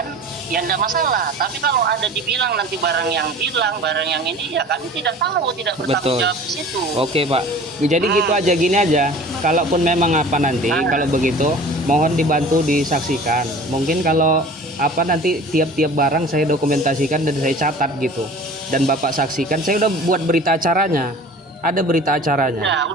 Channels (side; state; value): both; normal; correlation 0.43